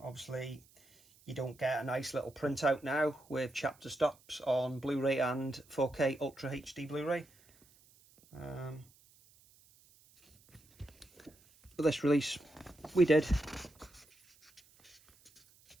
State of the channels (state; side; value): noise; right; hiss, 28 dB below the sound